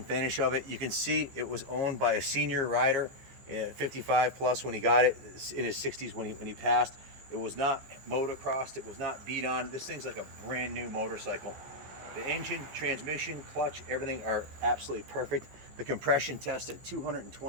finish of it. You can see it was owned by a senior rider, 55 plus when he got it, in his 60s when he passed. It was not motocrossed, it was not beat on. This thing's like a brand new motorcycle. The engine, transmission, clutch, everything are absolutely perfect. The compression test at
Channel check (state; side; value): late; left; 15 ms